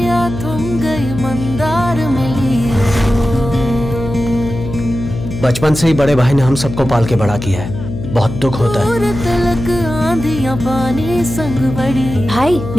थम गई मंदार मिली। बचपन से ही बड़े भाई ने हम सबको पाल के बड़ा किया है, बहुत दुख होता है। तलक आंधियां पानी संग बड़ी। भाई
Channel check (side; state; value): left; noise; hum, 8 dB below the sound